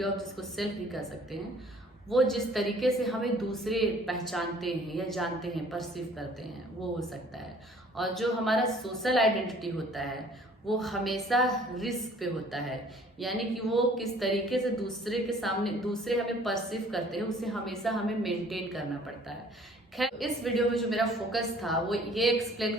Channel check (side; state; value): both; normal; correlation 0.55